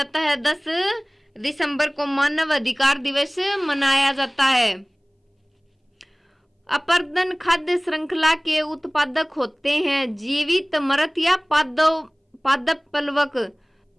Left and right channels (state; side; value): identical; both; correlation 1.00